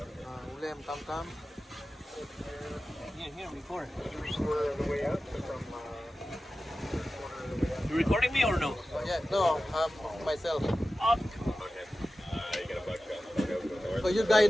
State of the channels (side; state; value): both; normal; correlation 0.94